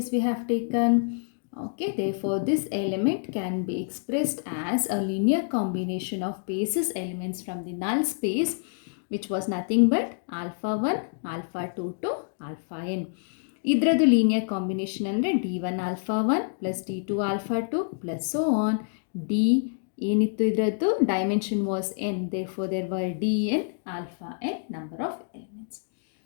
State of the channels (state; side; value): silent; right; digital silence